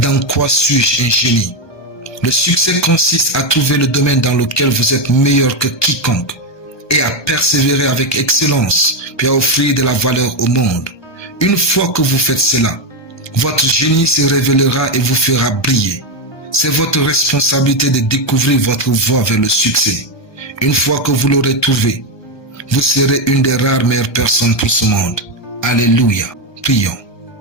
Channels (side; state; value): right; late; 1.2 ms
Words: quoi suis-je un génie? Le succès consiste à trouver le domaine dans lequel vous êtes meilleur que quiconque et à persévérer avec excellence, puis à offrir de la valeur au monde. Une fois que vous faites cela, votre génie se révélera et vous fera briller. C'est votre responsabilité de découvrir votre voie vers le succès. Une fois que vous l'aurez trouvé, vous serez une des rares meilleures personnes pour ce monde. Alléluia. Prions.